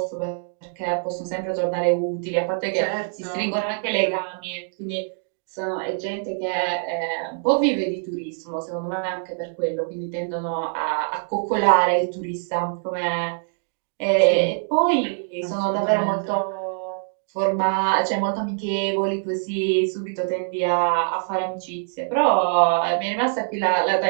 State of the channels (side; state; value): left; silent; digital silence